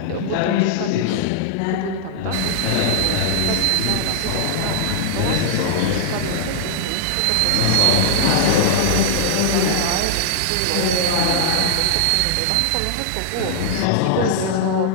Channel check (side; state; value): both; different; correlation -0.01